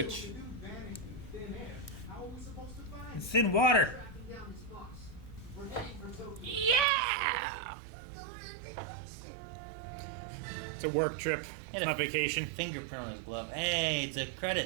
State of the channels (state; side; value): drops out; left; at 6.9 s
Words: It's in water. It's a work trip. It's not vacation. Fingerprint on his glove. Hey, it's a